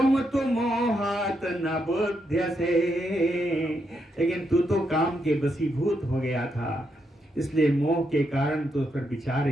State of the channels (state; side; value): normal; both; correlation 0.81